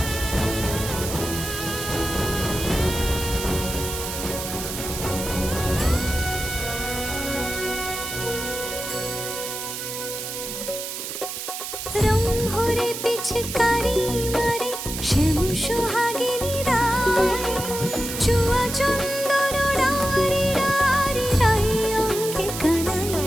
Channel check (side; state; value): right; noise; hiss, 6 dB below the sound